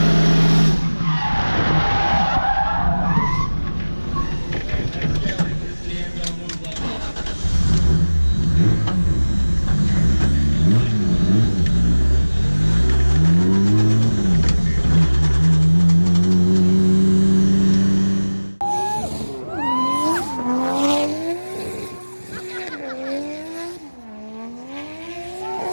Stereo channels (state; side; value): inverted; both; correlation -1.00